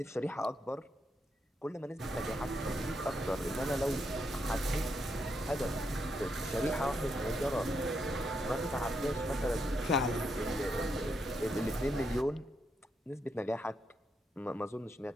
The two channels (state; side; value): normal; both; correlation 0.80